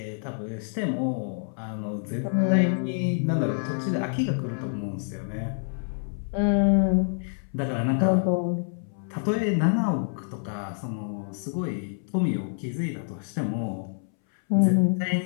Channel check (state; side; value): silent; right; 60 dB below the other